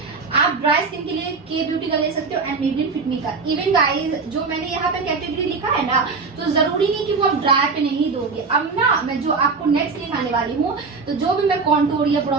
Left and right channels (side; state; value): left; quieter; 4.5 dB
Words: आप ड्राई स्किन के लिए के ब्यूटी का ले सकते हो एंड मेबलिन फिट मी का। इवन गाइस जो मैंने यहाँ पे कैटेगरी लिखा है ना, तो जरूरी नहीं कि वो आप ड्राई पे नहीं दोगे। अब ना मैं जो आपको नेक्स्ट लिखाने वाली हूँ, तो जो भी मैं कॉन्टूर या